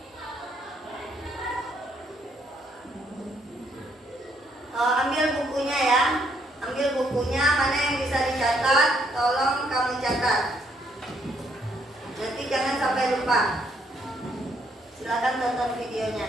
Ambil bukunya ya. Ambil bukunya, mana yang bisa dicatat, tolong kamu catat. Nanti jangan sampai lupa. Silakan tonton videonya.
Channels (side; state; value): both; normal; correlation 0.71